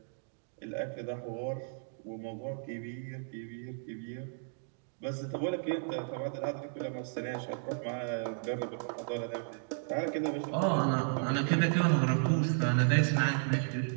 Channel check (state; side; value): silent; left; digital silence